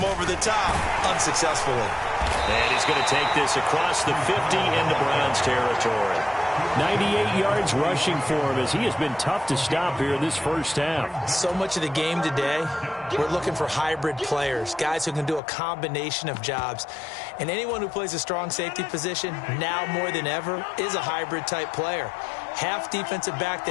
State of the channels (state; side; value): drops out; right; at 15.4 s